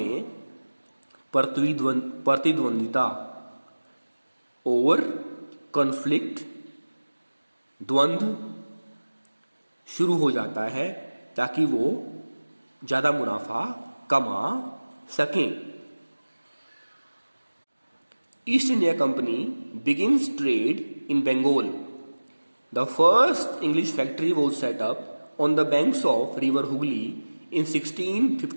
प्रतिद्वंदिता और कॉन्फ्लिक्ट, द्वंद्व शुरू हो जाता है ताकि वो ज़्यादा मुनाफा कमा सकें। East India company begins trade in Bengal. The first English factory was set up on the banks of River Hooghly in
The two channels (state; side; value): inverted; both; correlation -1.00